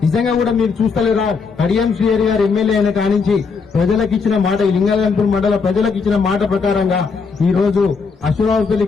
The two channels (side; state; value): right; quieter; 5.1 dB